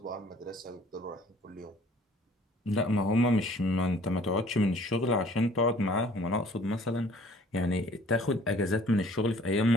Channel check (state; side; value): normal; both; correlation 0.54